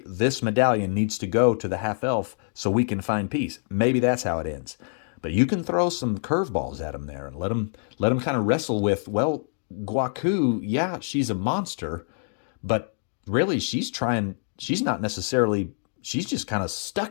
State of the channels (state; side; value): silent; right; digital silence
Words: this medallion needs to go to the half-elf so we can find peace. Maybe that's how it ends. But you can throw some curveballs at them there and let them kind of wrestle with, well, Guaku, yeah, she's a monster, but really she's not necessarily, she's just kind of